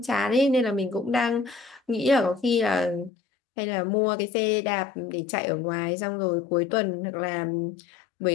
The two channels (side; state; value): right; drops out; at 3.1 s